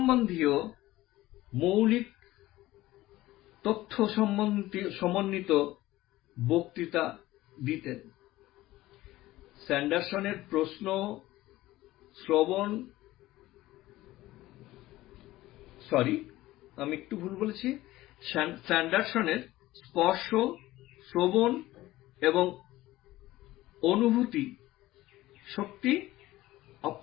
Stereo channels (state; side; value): quieter; right; 16.8 dB